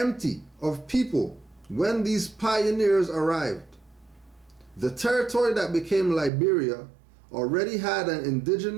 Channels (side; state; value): left; drops out; at 6.3 s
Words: of people when these pioneers arrived. The territory that became Liberia already had an